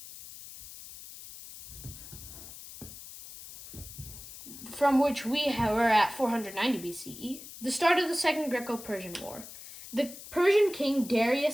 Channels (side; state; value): left; noise; hiss, 14 dB below the sound